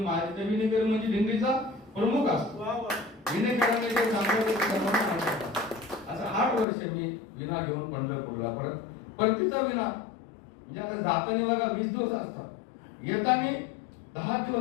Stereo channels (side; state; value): right; drops out; at 6.7 s